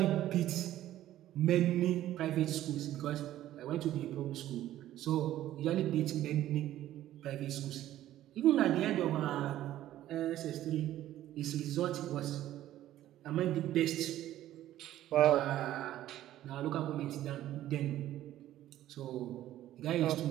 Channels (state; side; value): quieter; left; 13.4 dB